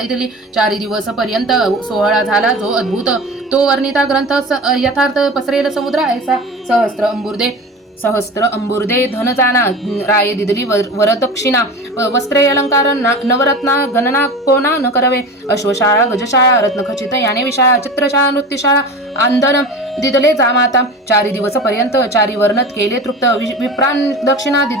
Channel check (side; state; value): both; normal; correlation 0.32